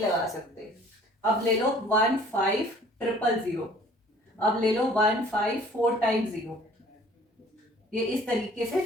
सकते. अब ले लो 15000. अब ले लो 154 टाइम्स 0. ये इस तरीके से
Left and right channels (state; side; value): normal; both; correlation 0.52